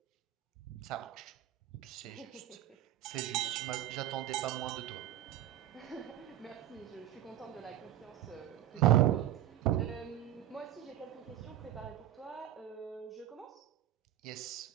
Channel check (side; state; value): left; quieter; 12.7 dB